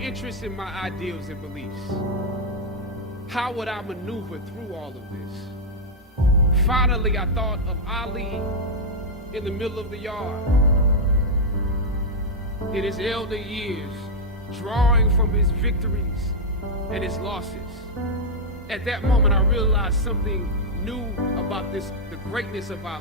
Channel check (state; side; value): normal; both; correlation -0.03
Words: in my ideals and beliefs. How would I maneuver through all of this? Finally, I thought of Ali in the middle of the yard, in his elder years, drawing from his victories and his losses. At that moment, I realized something new about the greatness of